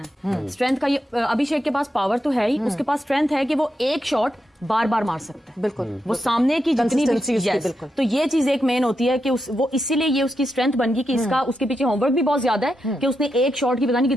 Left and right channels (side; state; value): both; normal; correlation 0.85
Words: है। स्ट्रेंथ का ये अभिषेक के पास पावर तो है ही, उसके पास स्ट्रेंथ है कि वो एक शॉट बार बार मार सकता है। बिल्कुल, वो सामने की जितनी Consistency उसकी, yes, बिल्कुल। तो ये चीज एक मेन होती है कि वो इसीलिए ये उसकी स्ट्रेंथ बन गई कि इसका उसके पीछे होमवर्क भी बहुत ज्यादा है कि उसने एक शॉट की पता नहीं